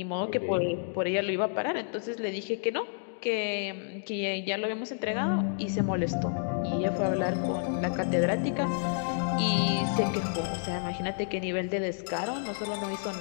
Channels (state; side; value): silent; right; digital silence